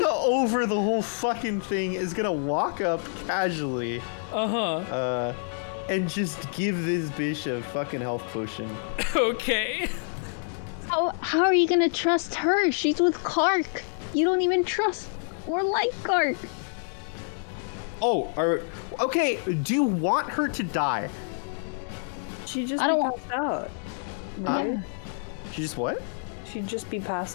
over the whole fucking thing, is gonna walk up casually. And just give this bitch a fucking health potion. Okay. How are you gonna trust her? She's with Clark. You don't even trust or like Clark. Oh, okay, do you want her to die? She'd just I don't be want- passed out. Right? She just what? She'd just be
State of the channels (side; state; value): right; silent; digital silence